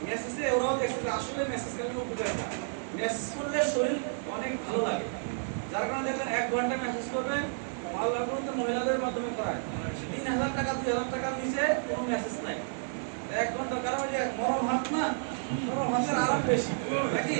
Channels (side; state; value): left; silent; digital silence